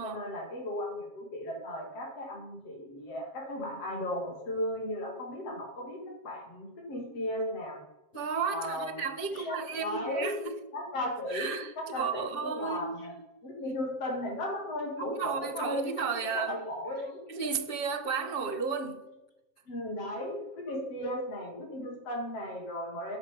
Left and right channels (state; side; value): late; right; 7.5 ms